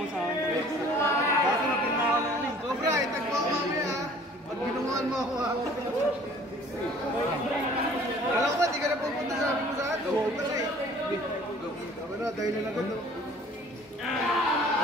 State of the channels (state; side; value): normal; both; correlation 0.51